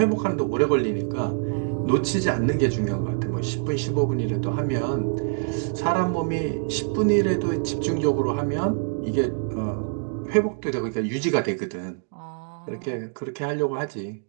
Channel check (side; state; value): left; silent; 62 dB below the other